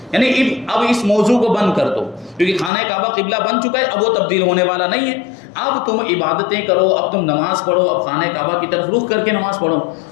یعنی اب اس موضوع کو بند کر دو، کیونکہ خانہ کعبہ قبلہ بن چکا ہے، اب وہ تبدیل ہونے والا نہیں ہے۔ اب تم عبادتیں کرو، اب تم نماز پڑھو، اب خانہ کعبہ کی طرف رخ کر کے نماز پڑھو،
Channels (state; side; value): drops out; right; at 2.7 s